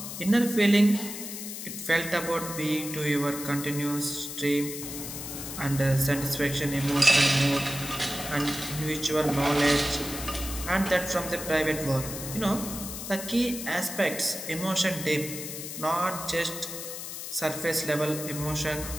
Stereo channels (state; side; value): noise; left; hiss, 8 dB below the sound